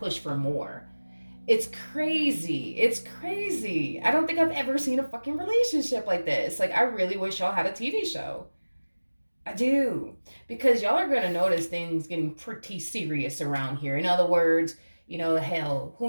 for more. It's crazy. It's crazy. I don't think I've ever seen a fucking relationship like this. Like, I really wish y'all had a TV show. I do. Because y'all are going to notice things getting pretty serious around here. In other words, you know, hell,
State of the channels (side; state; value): both; inverted; correlation -1.00